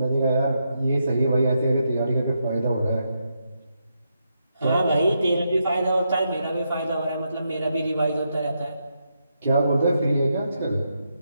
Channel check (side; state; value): both; inverted; correlation -0.82